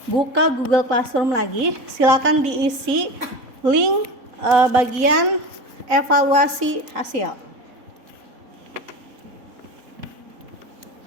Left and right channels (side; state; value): left; late; 4.0 ms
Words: buka Google Classroom lagi. Silakan diisi link bagian evaluasi hasil.